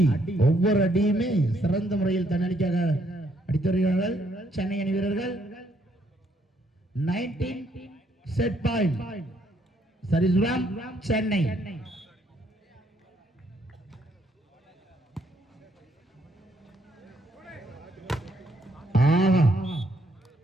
ஒவ்வொரு அடியுமே சிறந்த முறையில் தன்னடிக்காக அடித்து வருகிறார்கள் சென்னை அணி வீரர்கள். 19 set point Sarisuram Chennai.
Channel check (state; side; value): normal; both; correlation 0.71